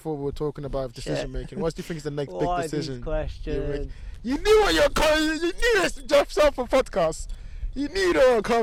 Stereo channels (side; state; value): both; identical; correlation 1.00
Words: what we were talking about decision making. What do you think is the next big decision you'll make? You knew what you're coming. You knew this, Jeff Sarpong podcast. You knew they were